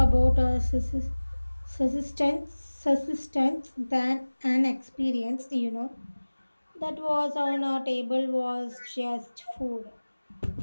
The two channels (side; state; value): both; inverted; correlation -1.00